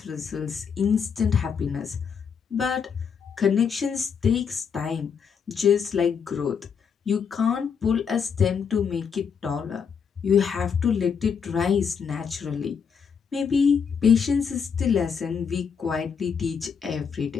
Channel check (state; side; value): quieter; right; 6.6 dB